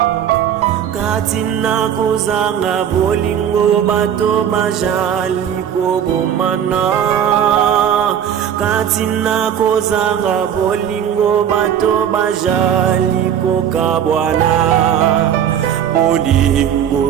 Katina kozanga bolingo bato bazali kobomana Katina kozanga bolingo bato bazali kokabwana Bolingo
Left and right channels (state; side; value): quieter; left; 9.2 dB